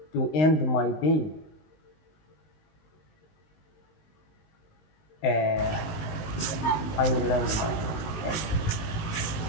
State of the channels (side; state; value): right; late; 19 ms